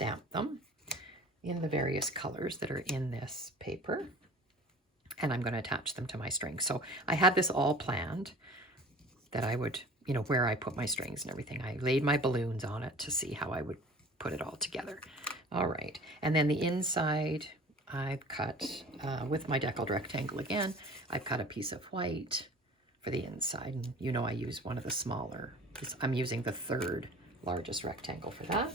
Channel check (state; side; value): normal; both; correlation 0.43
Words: them in the various colors that are in this paper. And I'm going to attach them to my strings. So I had this all planned, that I would, you know, where I put my strings and everything. I laid my balloons on it to see how I would put it all together. All right, and then the inside I've cut with my deckled rectangle again. I've cut a piece of white for the inside. And you know I use one of the smaller. I'm using the 3rd largest rectangle for that.